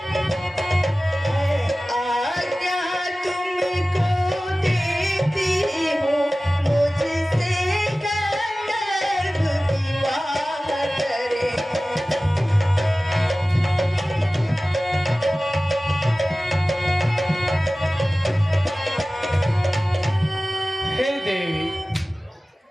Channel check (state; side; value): normal; both; correlation 0.97